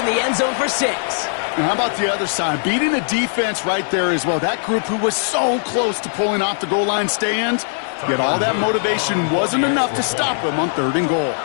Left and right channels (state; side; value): silent; right; digital silence